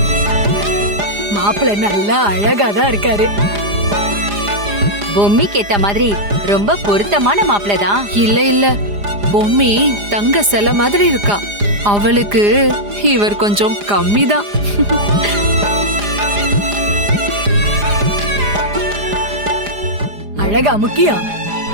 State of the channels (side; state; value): left; late; 4.9 ms